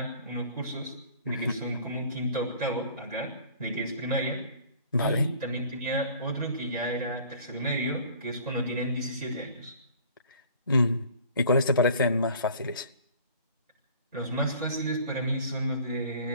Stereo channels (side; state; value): both; inverted; correlation -0.50